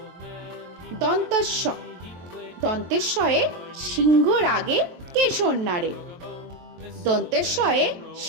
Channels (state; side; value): late; left; 23 ms